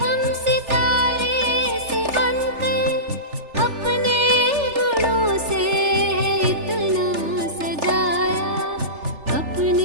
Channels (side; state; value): left; late; 3.4 ms